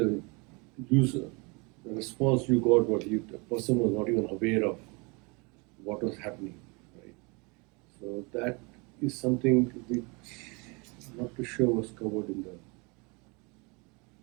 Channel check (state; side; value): quieter; left; 29.6 dB